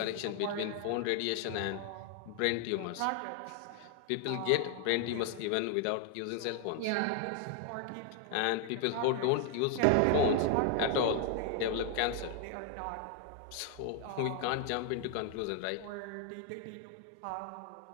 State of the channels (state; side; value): different; both; correlation 0.00